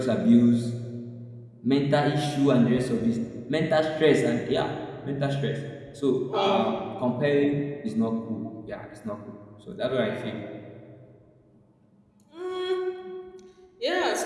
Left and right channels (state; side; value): identical; both; correlation 1.00